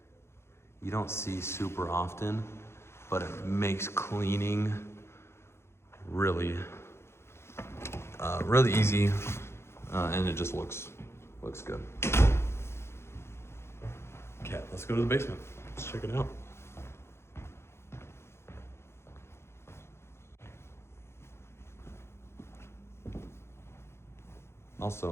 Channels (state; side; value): late; right; 0.12 ms